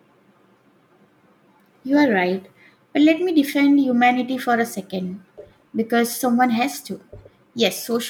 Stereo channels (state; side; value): identical; both; correlation 1.00